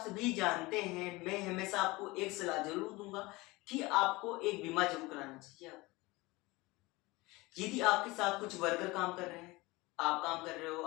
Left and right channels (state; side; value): quieter; right; 22.2 dB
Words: जानते हैं, मैं हमेशा आपको एक सलाह जरूर दूंगा कि आपको एक बीमा जरूर कराना चाहिए। आप यदि आपके साथ कुछ वर्कर काम कर रहे हैं, आप काम कर रहे हो,